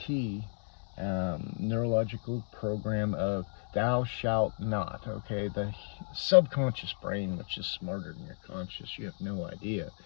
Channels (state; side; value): silent; right; 56 dB below the other